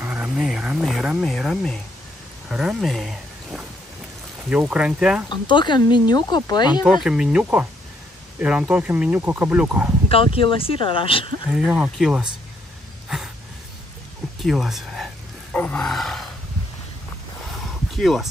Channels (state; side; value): normal; both; correlation 0.72